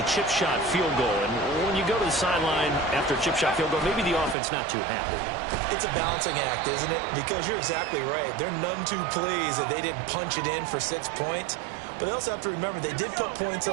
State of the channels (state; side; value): drops out; left; at 4.4 s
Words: chip shot field goal. And when you go to the sideline after a chip shot field goal, maybe the offense not too happy. It's a balancing act, isn't it? Because you're exactly right. They're none too pleased that they didn't punch it in for 6 points. But they also have to remember they did put points